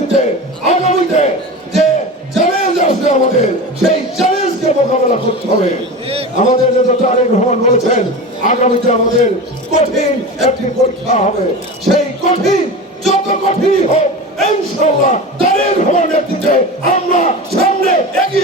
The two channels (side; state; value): both; normal; correlation 0.28